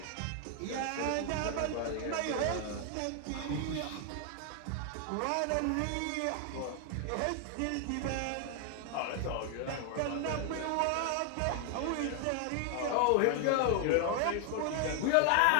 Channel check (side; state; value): both; different; correlation 0.00